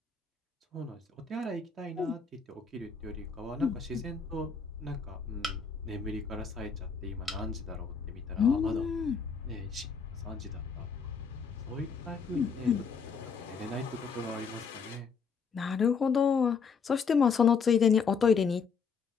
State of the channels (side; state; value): right; quieter; 5.7 dB